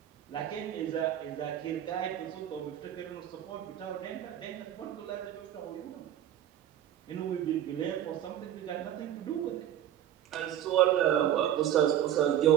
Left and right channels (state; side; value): quieter; left; 11.1 dB